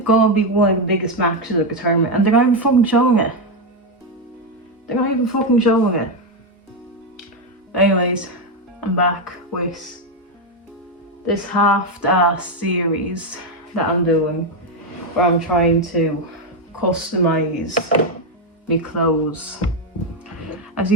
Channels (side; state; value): both; normal; correlation 0.06